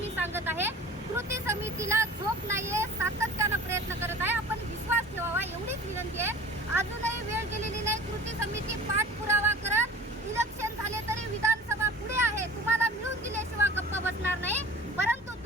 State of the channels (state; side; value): normal; both; correlation 0.42